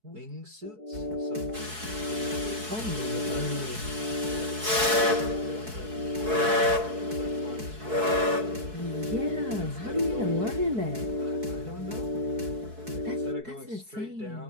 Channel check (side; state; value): left; late; 4.6 ms